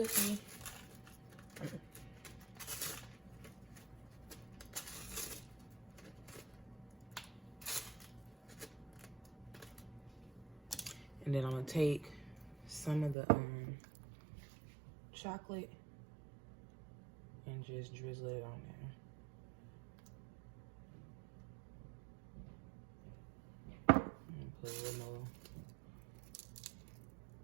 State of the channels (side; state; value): left; drops out; at 13.2 s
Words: And then I'm gonna take some of the chocolate and just drizzle it on there. And put a little more